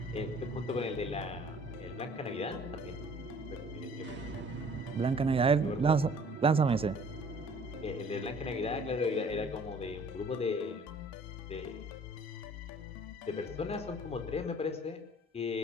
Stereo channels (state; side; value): normal; both; correlation 0.53